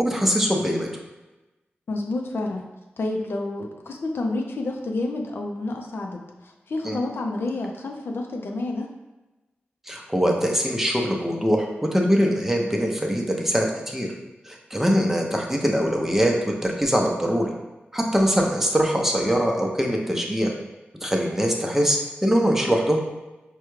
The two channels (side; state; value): both; normal; correlation 0.88